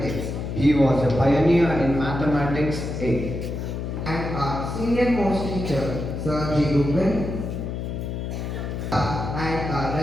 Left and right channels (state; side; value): noise; left; hum, 4 dB below the sound